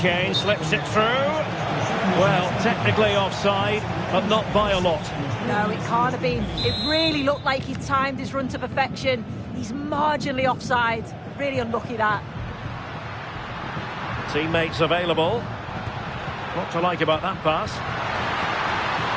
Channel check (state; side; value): identical; both; correlation 1.00